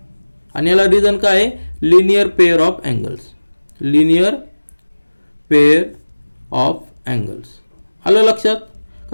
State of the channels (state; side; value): inverted; both; correlation -1.00